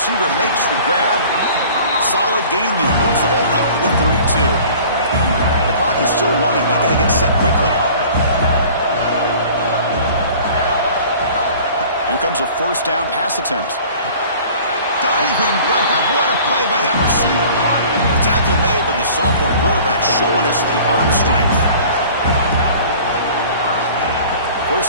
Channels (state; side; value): inverted; both; correlation -0.47